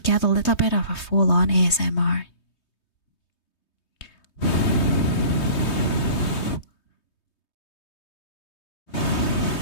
a little bit of a full-on ASMR.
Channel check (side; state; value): right; late; 3.2 ms